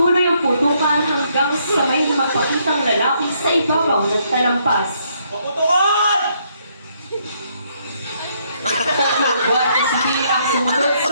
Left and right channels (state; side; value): inverted; both; correlation -0.72